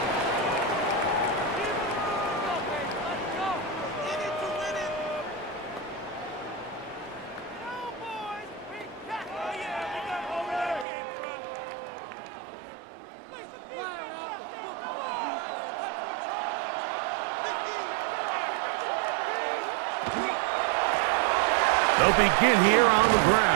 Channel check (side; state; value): left; drops out; at 10.9 s